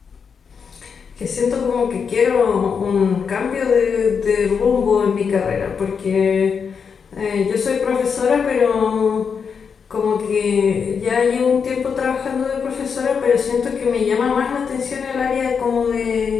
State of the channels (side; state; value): right; quieter; 6.2 dB